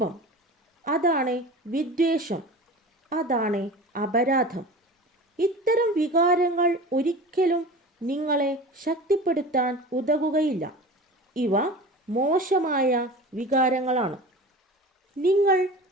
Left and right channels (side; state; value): both; normal; correlation 0.35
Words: അതാണ് വിദ്വേഷം, അതാണ് അപരാധം. ഇത്തരം വികാരങ്ങൾ ഒരിക്കലും നിങ്ങളെ ശക്തിപ്പെടുത്താൻ ഉതകുകയില്ല. ഇവ മോശമായ വികാരങ്ങളാണ്. നിങ്ങൾ